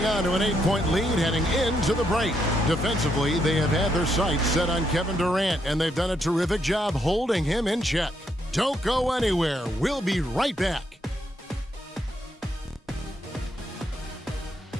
on to an 8-point lead heading into the break. Defensively, they have had their sights set on Kevin Durant, and they've done a terrific job holding him in check. Don't go anywhere. We'll be right back.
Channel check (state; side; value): normal; both; correlation 0.77